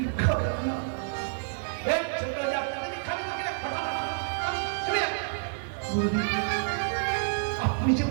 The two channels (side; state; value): left; silent; digital silence